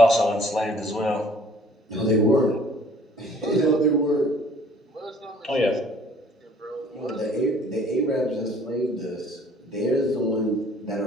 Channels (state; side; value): normal; both; correlation 0.56